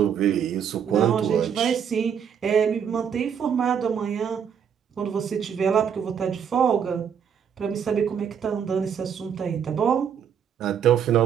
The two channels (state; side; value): quieter; left; 7.8 dB